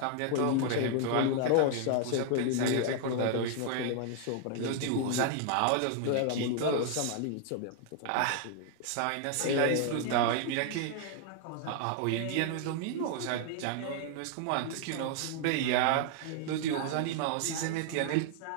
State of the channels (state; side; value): different; both; correlation 0.00